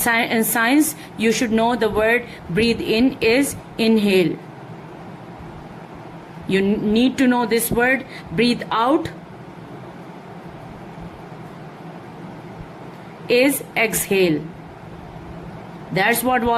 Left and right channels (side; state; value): both; identical; correlation 1.00